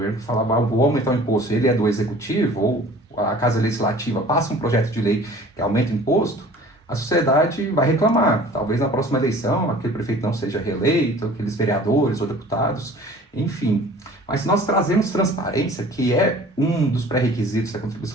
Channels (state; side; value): normal; both; correlation 0.47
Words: falava, vou aumentar o imposto, ele é do executivo, ou a Casa Legislativa passa um projeto de lei que aumenta o imposto, a sociedade vai reclamar. Talvez na próxima eleição aquele prefeito não seja reeleito, aqueles vereadores ou deputados, enfim. Mas se nós trazemos transparência, que é um dos pré-requisitos da